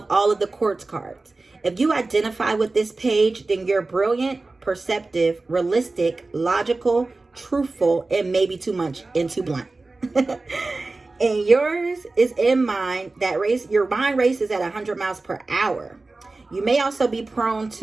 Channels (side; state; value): left; quieter; 3.4 dB